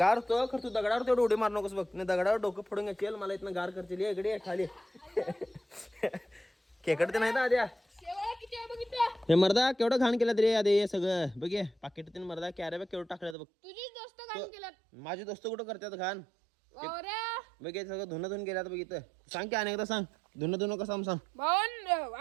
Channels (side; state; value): left; drops out; at 13.4 s